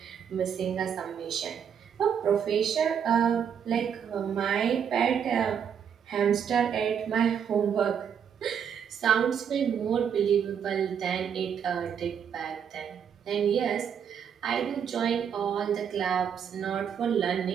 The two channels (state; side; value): quieter; left; 7.9 dB